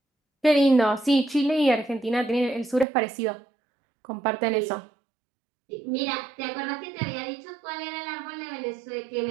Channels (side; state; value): left; drops out; at 2.9 s